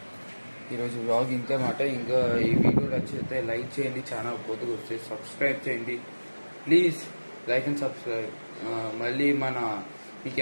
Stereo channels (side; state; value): both; inverted; correlation -1.00